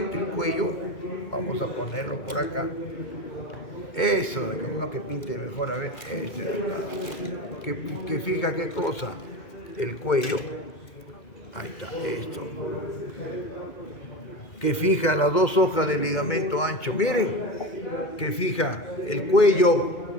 el cuello, vamos a ponerlo por acá. Eso, uno que pinte mejor, a ver, que fija qué cosa, el cuello, ahí está, esto, que fija las dos hojas del ligamento ancho, miren, que fija el cuello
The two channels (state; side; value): late; right; 2.4 ms